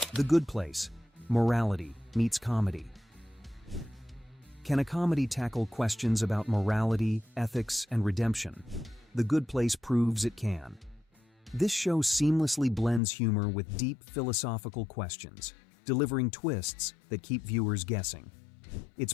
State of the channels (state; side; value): drops out; right; at 13.0 s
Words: The Good Place: Morality meets comedy. Can a comedy tackle questions about morality, ethics, and redemption? The Good Place proves it can. This show seamlessly blends humor with deep philosophical questions, delivering twists that keep viewers guessing. Its